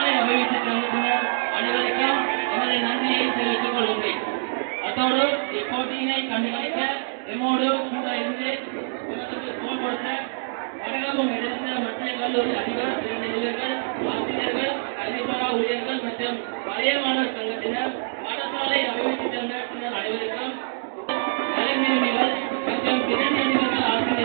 அபிவிருத்தி சங்கத்தினர் அனைவருக்கும் எமது நன்றியை தெரிவித்துக் கொள்கின்றேன். அதோடு இப்போட்டியினை கண்டுகளிக்க எம்மோடு கூட இருந்து தோல் கொடுத்த வடகலூர் எடுத்த மத்திய கல்லூரி அதிபர் பிரதிநிதிகள் ஆசிரியர்கள் கல்விசாரா ஊழியர்கள் மற்றும் பழைய மாணவர் சங்கத்தினர் பாடசாலை அபிவிருத்தி சங்கத்தினர் அனைவருக்கும் கலைஞர்கள் மற்றும் பிரதிநிதிகள்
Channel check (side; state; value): left; silent; digital silence